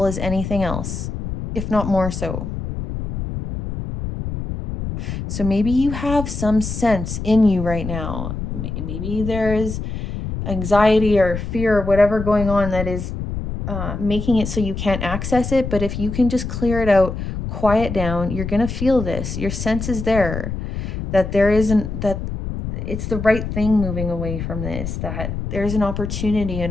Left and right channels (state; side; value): noise; left; rumble, 5 dB below the sound